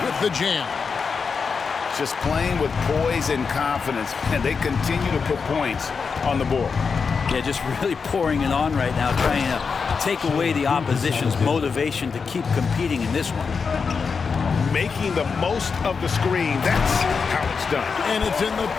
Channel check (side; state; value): right; quieter; 5.4 dB